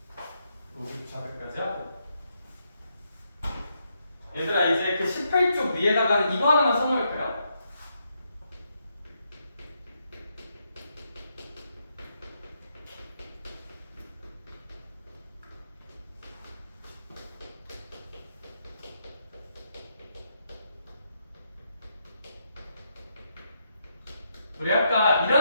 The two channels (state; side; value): inverted; both; correlation -0.79